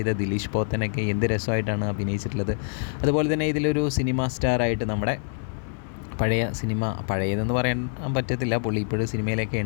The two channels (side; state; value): right; silent; 55 dB below the other